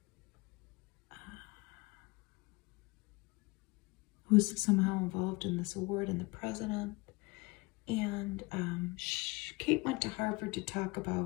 Who's somehow involved in this award, and the president. And Kate went to Harvard to talk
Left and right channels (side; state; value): right; quieter; 24.9 dB